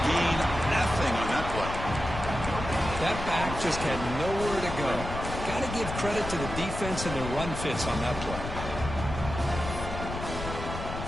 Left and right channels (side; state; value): left; noise; rumble, 7 dB below the sound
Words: gain nothing on that play. That back just had nowhere to go. Got to give credit to the defense and their run fits on that play.